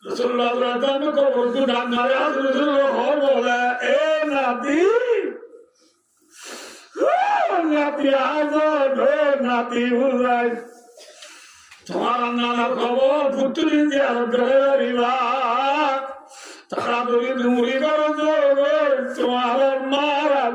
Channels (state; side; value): identical; both; correlation 1.00